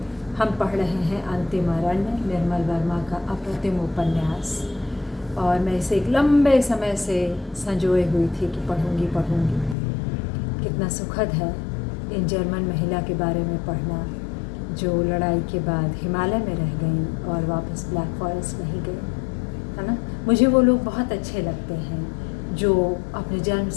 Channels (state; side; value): drops out; right; at 9.8 s